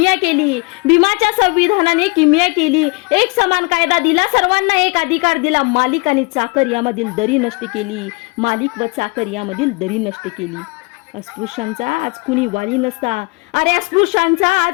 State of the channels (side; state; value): right; quieter; 29.3 dB